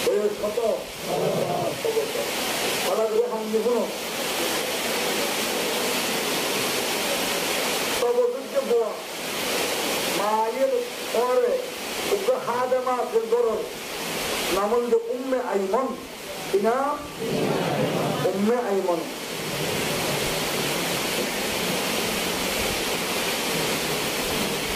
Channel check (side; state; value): both; identical; correlation 1.00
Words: বয়স কত মায়ের পরে হাদেমা গরর নাম হল উম্মে আইমন কিনা উম্মে আইমন